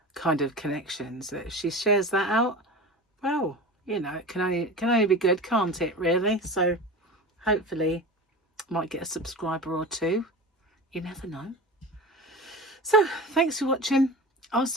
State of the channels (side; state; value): both; normal; correlation 0.32